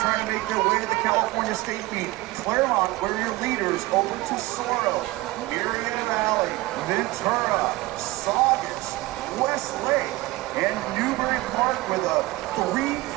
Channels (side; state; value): left; quieter; 19.6 dB